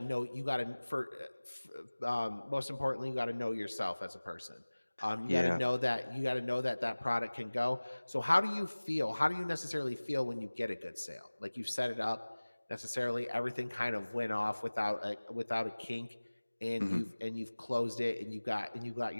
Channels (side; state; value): both; inverted; correlation -1.00